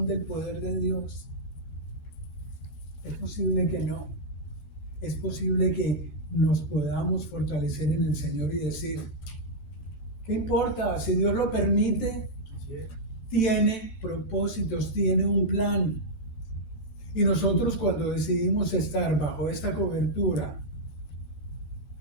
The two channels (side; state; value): right; late; 13 ms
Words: del poder de Dios? Es posible que no. Es posible que nos podamos fortalecer en el Señor y decir, ¿qué importa? Si Dios lo permite, tiene propósitos, tiene un plan. Y nosotros cuando decidimos estar bajo esta cobertura